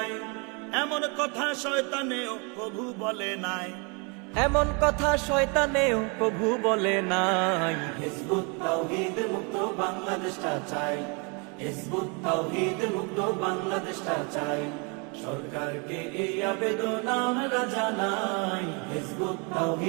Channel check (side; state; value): left; quieter; 33.2 dB